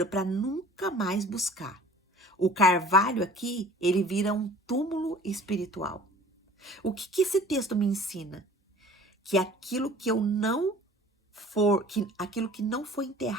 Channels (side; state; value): both; normal; correlation 0.47